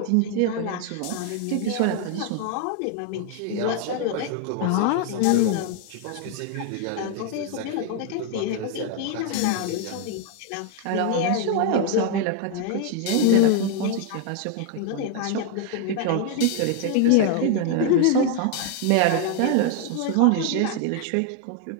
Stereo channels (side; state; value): both; different; correlation 0.00